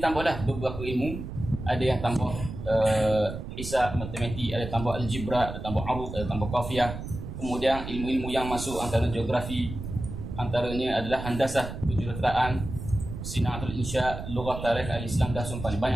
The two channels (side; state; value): right; noise; rumble, 8 dB below the sound